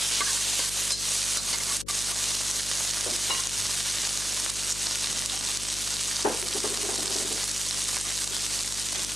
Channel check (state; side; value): noise; left; hum, 12 dB below the sound